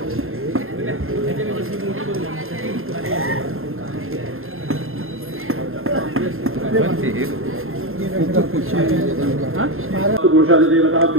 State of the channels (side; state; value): left; late; 0.61 ms